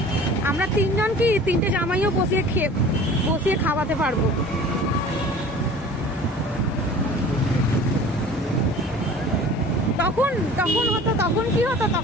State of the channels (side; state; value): both; normal; correlation 0.44